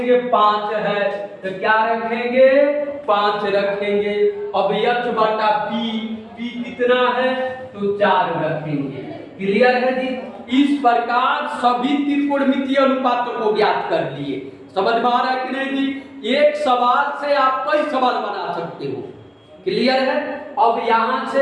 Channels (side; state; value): both; identical; correlation 1.00